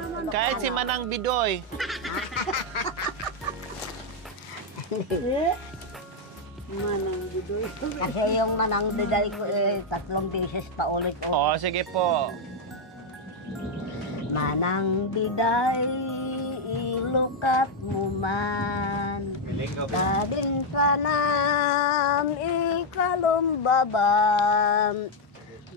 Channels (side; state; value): both; normal; correlation 0.01